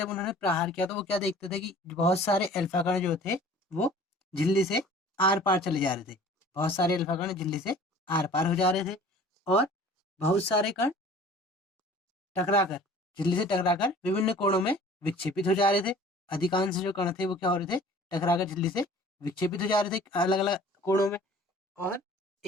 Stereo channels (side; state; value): both; normal; correlation 0.48